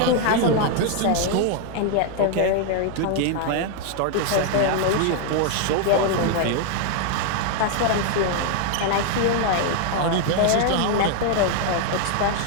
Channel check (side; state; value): both; different; correlation 0.00